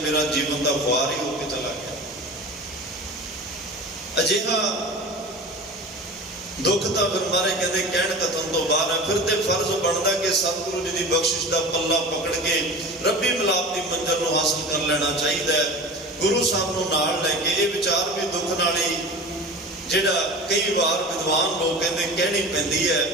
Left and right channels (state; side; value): normal; both; correlation 0.35